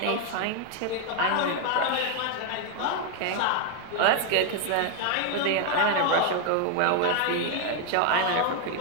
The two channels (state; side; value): different; both; correlation 0.01